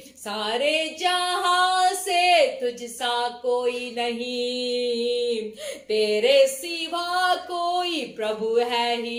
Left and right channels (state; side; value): identical; both; correlation 1.00